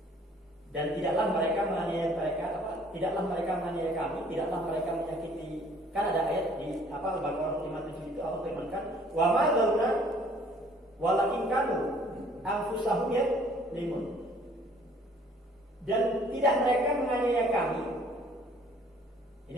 Dan tidaklah mereka menganiaya tidaklah mereka menganiaya kami, tidaklah mereka menyakiti. Kan ada ayat di Al-Baqarah 57 itu Allah firmankan, wa ma zalamuna walakin kanu anfusahum yadzlimun. Dan tidak mereka menganiaya kami. Ini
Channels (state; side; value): normal; both; correlation 0.57